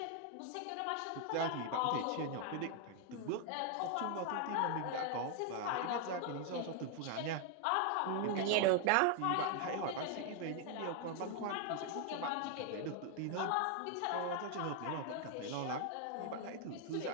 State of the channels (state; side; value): different; both; correlation 0.00